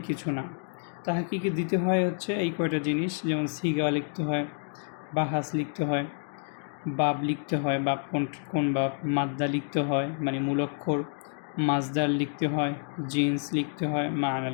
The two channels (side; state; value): right; silent; 57 dB below the other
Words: কিছু না। তাহকিকে দিতে হয় হচ্ছে এই কয়টা জিনিস, যেমন সিগা লিখতে হয়, বাহাস লিখতে হয়, বাব লিখতে হয়, বাব কোন বাব, মাদ্দা লিখতে হয় মানে মূল অক্ষর, মাজদার লিখতে হয়, জিন্স লিখতে হয়, মানা